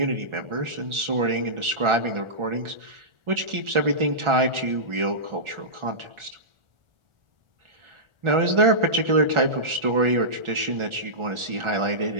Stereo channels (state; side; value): late; left; 1.4 ms